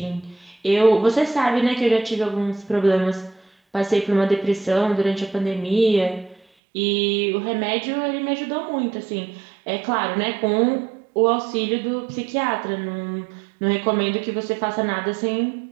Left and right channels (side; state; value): left; drops out; at 6.4 s